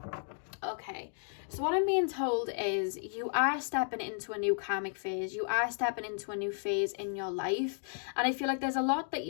Okay, so what I'm being told is you are stepping into a new karmic phase. You are stepping into a new phase in your life. And I feel like there's a lot that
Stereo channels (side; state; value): right; silent; 55 dB below the other